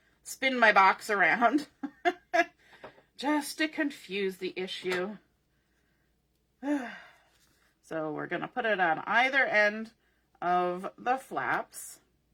box around just to confuse the issue. So we're going to put it on either end of the flaps,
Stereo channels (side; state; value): both; identical; correlation 1.00